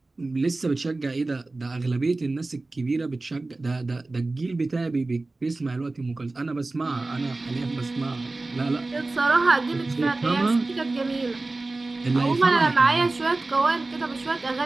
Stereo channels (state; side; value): quieter; left; 3.2 dB